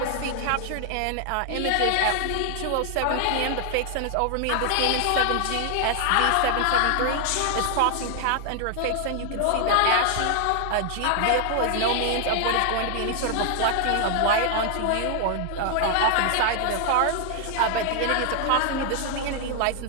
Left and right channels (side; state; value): both; different; correlation 0.00